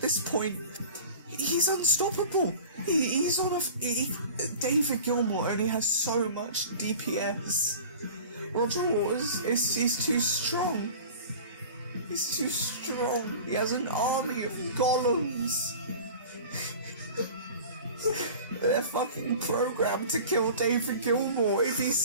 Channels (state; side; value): inverted; both; correlation -0.40